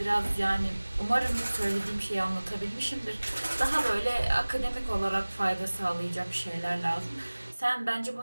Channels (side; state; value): both; inverted; correlation -1.00